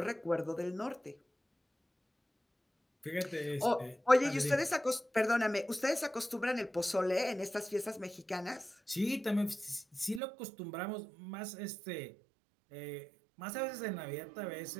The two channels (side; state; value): left; drops out; at 10.2 s